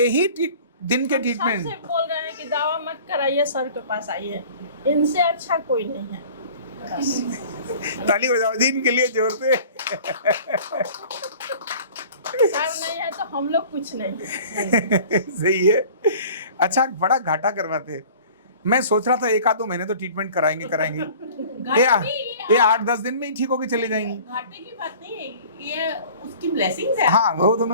ही दिन के ट्रीटमेंट। सबसे बोल रहे हैं कि दवा मत कराइए, सर के पास आइए, इनसे अच्छा कोई नहीं है। ताली बजाओ जी इनके लिए जोर से। सर नहीं है तो हम लोग कुछ नहीं है। सही है। अच्छा, बड़ा घाटा करवाते। मैं सोच रहा था 1-2 महीने तो ट्रीटमेंट कराएंगे। ये 8-10 दिन में ही ठीक होके चले जाएंगी। घाटे की बात नहीं है, ये उसकी ब्लेसिंग्स है। हाँ, वो तो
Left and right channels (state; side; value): inverted; both; correlation -0.46